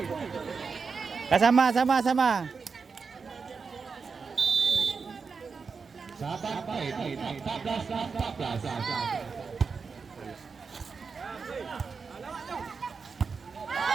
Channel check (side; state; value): left; quieter; 5.2 dB